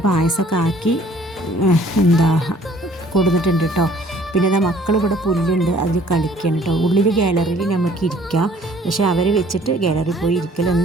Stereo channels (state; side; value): normal; both; correlation 0.57